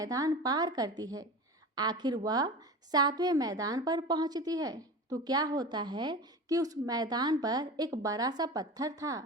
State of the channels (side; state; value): both; normal; correlation 0.31